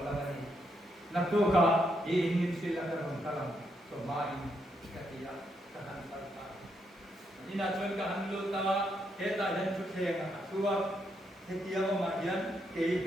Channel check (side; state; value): both; normal; correlation 0.78